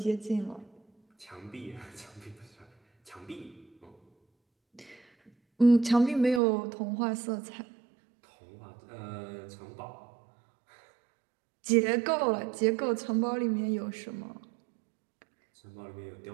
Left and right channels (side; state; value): left; drops out; at 6.4 s